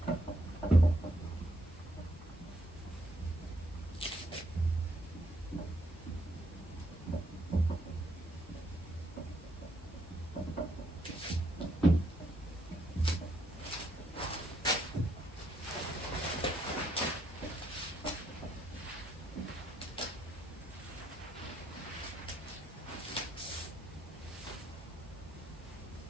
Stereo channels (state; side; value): normal; both; correlation 0.74